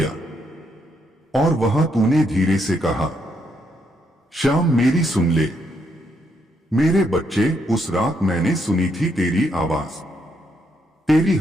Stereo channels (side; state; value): both; normal; correlation 0.76